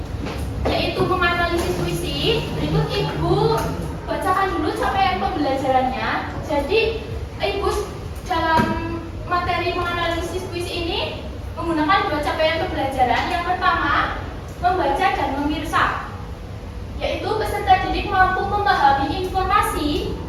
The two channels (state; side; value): identical; both; correlation 1.00